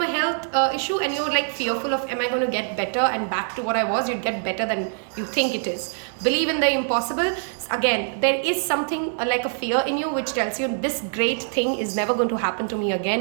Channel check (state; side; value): silent; left; 63 dB below the other